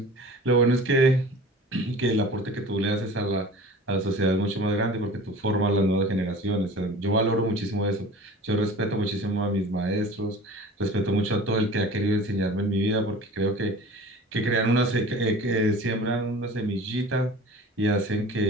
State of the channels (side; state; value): both; normal; correlation 0.41